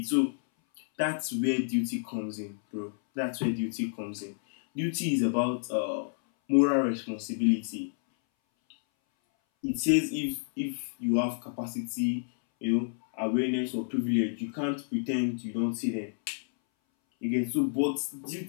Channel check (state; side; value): silent; right; 58 dB below the other